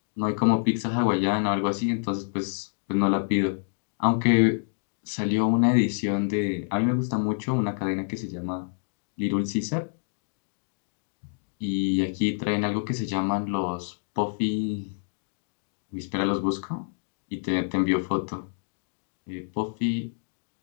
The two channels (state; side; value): silent; right; digital silence